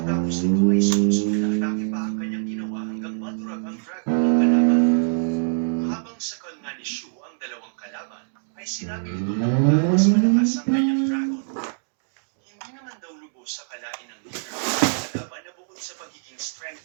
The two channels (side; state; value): left; silent; digital silence